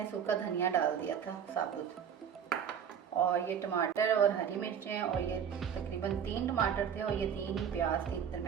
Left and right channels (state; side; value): quieter; left; 8.0 dB